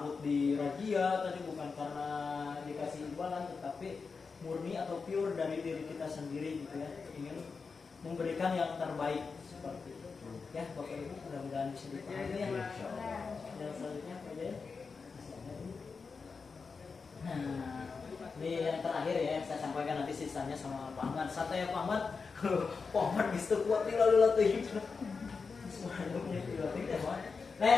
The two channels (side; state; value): right; quieter; 4.9 dB